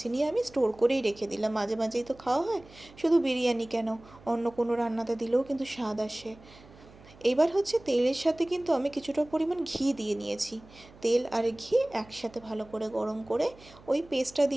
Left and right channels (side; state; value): right; noise; hum, 23 dB below the sound